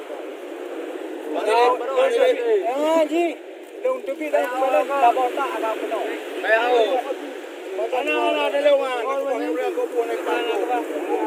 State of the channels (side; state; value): both; identical; correlation 1.00